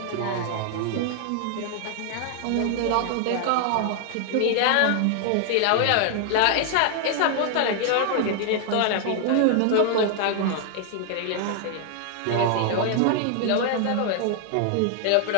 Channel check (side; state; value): both; different; correlation 0.00